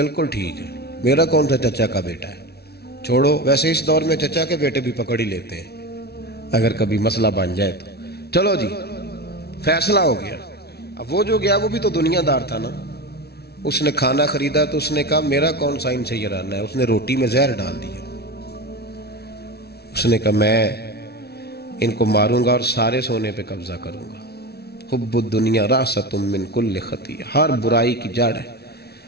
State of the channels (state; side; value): late; right; 0.47 ms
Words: ٹھیک ہے, میرا کون سا چچا کا بیٹا ہے, چھوڑو. ویسے اس دور میں چچا کے بیٹے بھی پکڑ ہی لیتے ہیں اگر کبھی مسئلہ بن جائے تو. چلو جی فیصلہ ہو گیا. اب وہ جو گیا وہ بھی تو دنیا دار تھا نا, اس نے کھانا خریدا تو اس نے کہا میرا کون سا ان سے یہ رہنا ہے. اس نے روٹی میں زہر ڈال دیا. اس نے کہا میں ان کو ماروں گا اور سارے سونے پہ قبضہ کروں گا. حب الدنیا راست من کل خطیہ, ہر برائی کی جڑ ہے.